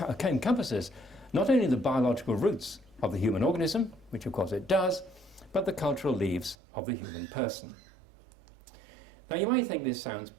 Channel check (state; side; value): drops out; left; at 6.6 s